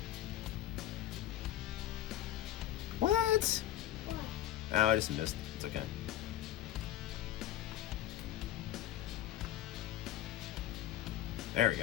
What? Oh, I just missed. It's okay. There we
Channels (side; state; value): right; quieter; 13.1 dB